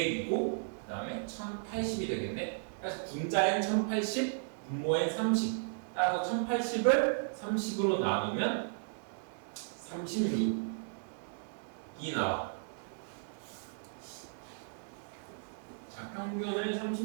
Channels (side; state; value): left; silent; digital silence